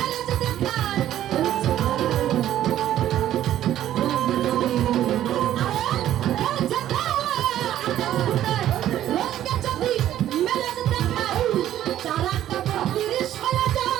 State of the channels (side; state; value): left; quieter; 12.2 dB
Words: যে দেখায় খেলছে খেলা আকাশ ফুটায় রোদকে যদি মেলে যে দেখায় চারাটা বত্রিশ হয়ে